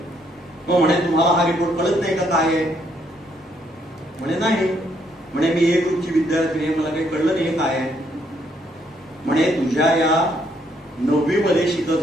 मग म्हणे तुम्हाला हा रिपोर्ट कळत नाही का काय आहे. म्हणे नाही. म्हणे मी A ग्रुपची विद्यार्थी आहे, मला काही कळलं नाही काय आहे. म्हणे तुझ्या या 9वी मध्ये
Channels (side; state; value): both; normal; correlation 0.71